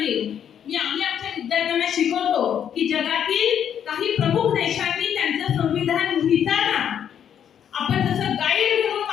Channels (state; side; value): quieter; right; 9.0 dB